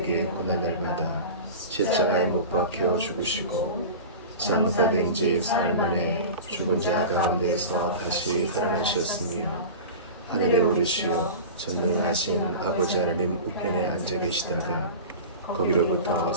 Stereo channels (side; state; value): both; inverted; correlation -0.32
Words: 고난을 받아 십자가에 못 박혀 죽으시고 장사된 지 사흘 만에 죽은 자 가운데서 다시 살아나셨으며 하늘에 오르시어 전능하신 아버지 하나님 우편에 앉아 계시다가 거기로부터